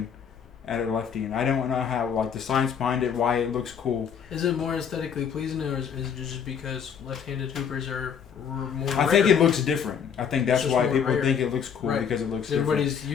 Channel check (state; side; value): quieter; right; 7.5 dB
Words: at a lefty, and I don't know how like the science behind it, why it looks cool. Is it more aesthetically pleasing, or is it just because left-handed hoopers are more? I think it looks different. I think that's It's just why more people rare. think it looks cool Right. because it looks different. Everybody's